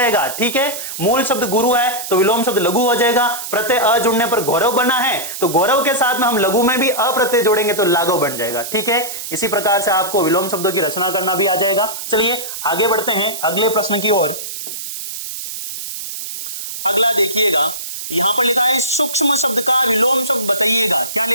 ठीक है, मूल शब्द गुरु है तो विलोम शब्द लघु हो जाएगा। प्रत्यय अ जुड़ने पर गौरव बना है तो गौरव के साथ में हम लघु में भी अ प्रत्यय जोड़ेंगे तो लाघव बन जाएगा। ठीक है, इसी प्रकार से आपको विलोम शब्दों की रचना करना भी आ जाएगा। चलिए आगे बढ़ते हैं अगले प्रश्न की ओर। अगला देखिएगा, यहां पर लिखा है सूक्ष्म शब्द का विलोम शब्द बताइएगा। क्या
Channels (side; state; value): right; noise; hiss, 8 dB below the sound